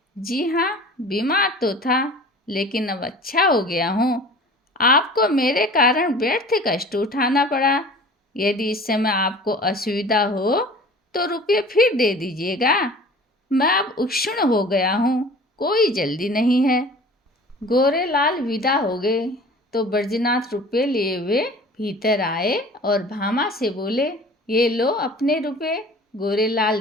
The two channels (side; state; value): both; normal; correlation 0.43